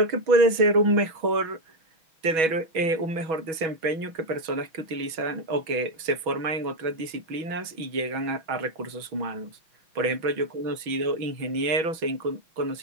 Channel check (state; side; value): late; left; 6.2 ms